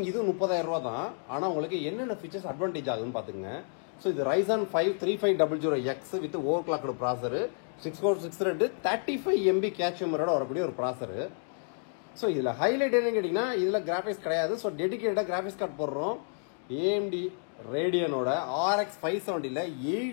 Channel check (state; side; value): silent; right; 58 dB below the other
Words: இது 30,000 ரூபாய் தான். ஆனா உங்களுக்கு என்னென்ன ஃபீச்சர்ஸ் அட்வான்டேஜ் ஆகுதுன்னு பாத்துங்க. ஸோ இது Ryzen 5 3500X with over clocked ப்ராசர், 6462 35 MB கேட்ச் மெமரியோட வரக்கூடிய ஒரு ப்ராசர். ஸோ இதுல ஹைலைட் என்னன்னு கேட்டீங்கன்னா இதுல கிராபிக்ஸ் கிடையாது. ஸோ டெடிகேட்டடா கிராபிக்ஸ் கார்டு போடுறோம். AMD ரேடியனோட RX 570ல